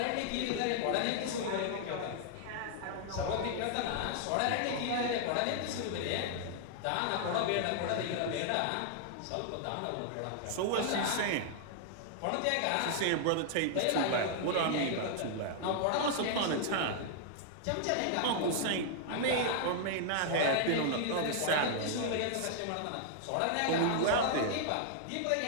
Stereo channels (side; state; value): both; different; correlation -0.01